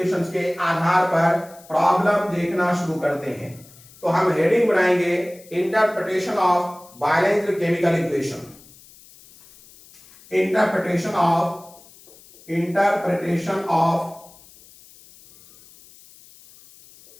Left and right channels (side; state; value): left; noise; hiss, 24 dB below the sound